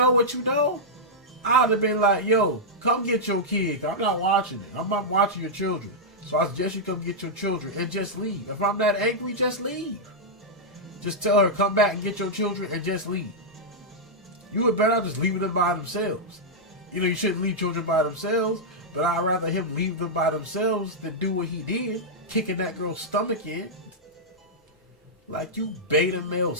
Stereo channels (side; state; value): both; normal; correlation -0.07